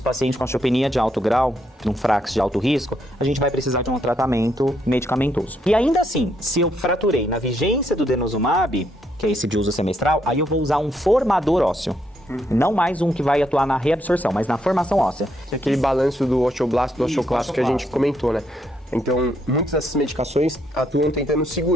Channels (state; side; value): normal; both; correlation 0.75